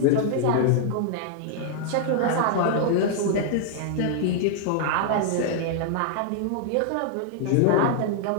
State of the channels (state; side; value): different; both; correlation -0.01